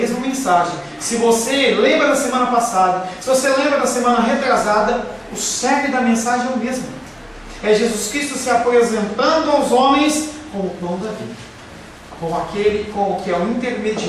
mensagem. Se você lembra da semana passada, se você lembra da semana retrasada, o cerne da mensagem é o mesmo. É Jesus Cristo se apresentando aos homens como o pão da vida, como aquele que é o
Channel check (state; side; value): identical; both; correlation 1.00